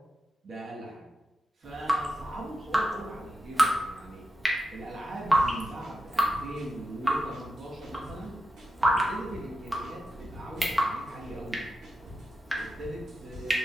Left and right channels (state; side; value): normal; both; correlation 0.88